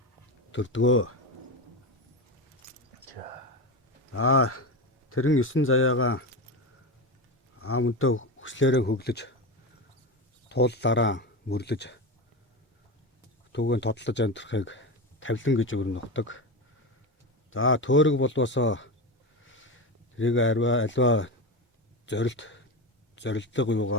төрдгөө. За, тэрэн 9 заяагаа аамөнтөө хүслээрээ хөглөж тууллаараа мөрлөж түүгээр тодлож амьдрахыг тавлан гэж өрнөгдөг. За, төөрөг болвосоо тэрийг альва зорилдог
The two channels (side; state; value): both; normal; correlation 0.19